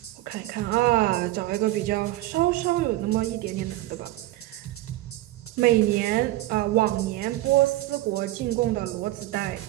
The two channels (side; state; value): left; quieter; 16.5 dB